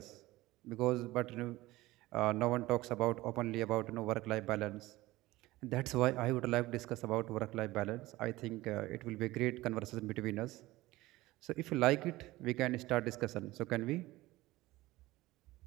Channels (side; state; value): left; quieter; 18.5 dB